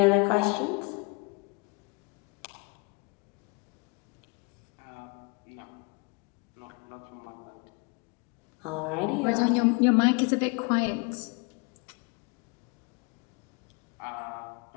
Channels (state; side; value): quieter; right; 28.9 dB